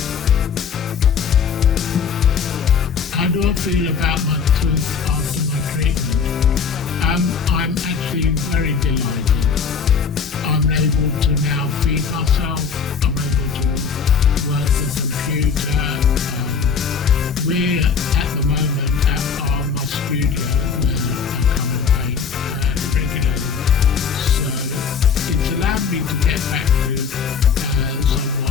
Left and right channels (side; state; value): right; quieter; 6.2 dB